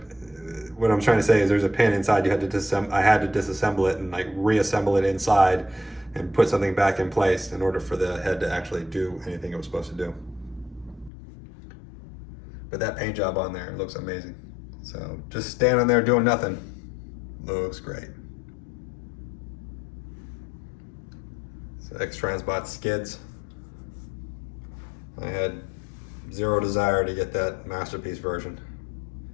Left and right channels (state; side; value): drops out; right; at 11.1 s